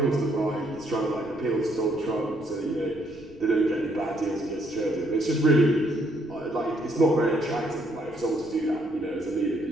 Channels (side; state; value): left; noise; rumble, 24 dB below the sound